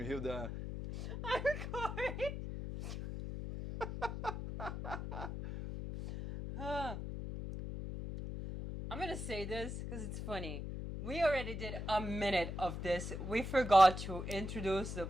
Hilda. I'm Corey. Huh. I'm gonna say this because it's funny. We already did a minute of this. We forgot to introduce the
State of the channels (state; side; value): noise; left; hum, 6 dB below the sound